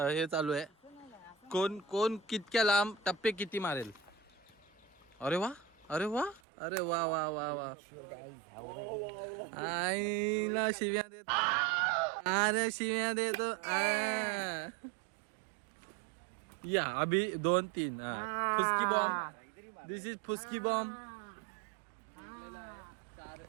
हे चालू आहे. कोण कितक्या लांब टप्पे किती मारेल. अरे वा अरे वा अरे वा वा वा वा. आईला शिव्या देतो. अरे शिव्या देतो. या अभी 2-3 फुसकी बॉम्ब. दिस इज फुसकी बॉम्ब.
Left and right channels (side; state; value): left; drops out; at 6.4 s